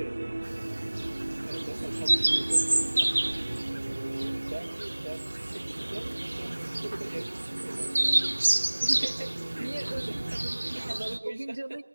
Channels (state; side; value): inverted; both; correlation -1.00